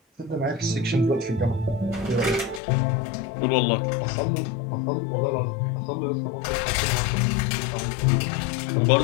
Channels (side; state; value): right; drops out; at 2.6 s